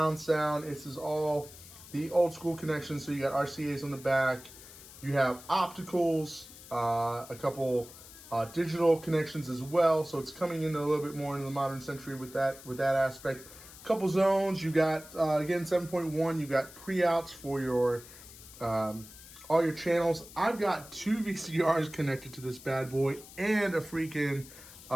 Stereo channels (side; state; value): left; noise; hiss, 18 dB below the sound